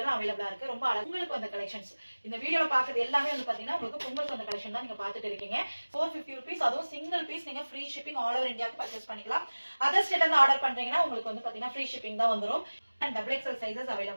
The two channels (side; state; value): both; inverted; correlation -1.00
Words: அவேலபிளா இருக்கு. ரொம்ப அழகா உங்களுக்கு அந்த கலெக்ஷன்ஸ் இந்த வீடியோல பாக்குறது எல்லாமே வந்து பாத்தீங்கன்னா உங்களுக்கு பொங்கல் அந்த கலெக்ஷன் தான் நீங்க பாத்துட்டு இருக்கீங்க. 450 rupees அதுவும் சிங்கிள் பீஸ் நீங்க ஃப்ரீ ஷிப்பிங் ஆல் ஓவர் இந்தியாவுக்கு பர்ச்சேஸ் பண்ணிக்கலாம். அதர் ஸ்டேட்ல இருந்து ஆர்டர் பண்றீங்கன்னா உங்களுக்கு வந்து பாத்தீங்கன்னா ஃப்ரீ ஷிப்பிங் தான் வந்துரும். and XXL சைஸஸ்